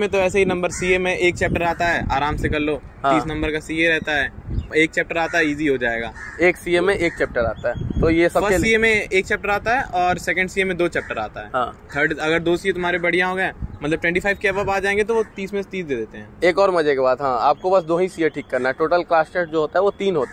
तो ऐसे ही नंबर, CA में एक चैप्टर आता है, आराम से कर लो। 30 नंबर का CA रहता है, एक चैप्टर आता है, इजी हो जाएगा। एक CA में एक चैप्टर आता है, तो ये सब CA में एक चैप्टर आता है और सेकंड CA में 2 चैप्टर आता है। थर्ड अगर 2 CA तुम्हारे बढ़िया हो गए, मतलब 25 के अब आ जाएंगे तो वो 30 में से 30 दे देते हैं। एक और मजे की बात, हाँ, आपको बस 2 ही CA ठीक करना है। टोटल क्लास टेस्ट जो होता है वो 3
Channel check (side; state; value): both; identical; correlation 1.00